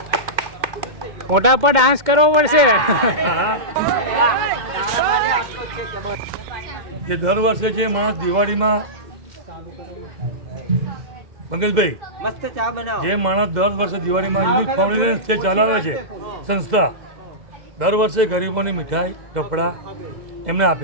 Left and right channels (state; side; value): late; left; 2.1 ms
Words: મોટા પર ડાન્સ કરવો પડશે. જે દર વર્ષે જે માણસ દિવાળીમાં પંકજભાઈ મસ્ત ચા બનાવો. જે માણસ દર વર્ષે દિવાળીમાં યુનિક ફાઉન્ડેશન જે ચલાવે છે સંસ્થા, દર વર્ષે ગરીબોની મીઠાઈ કપડાં એમને